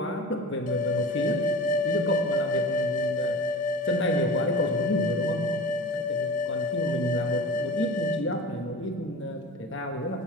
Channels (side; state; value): both; normal; correlation 0.34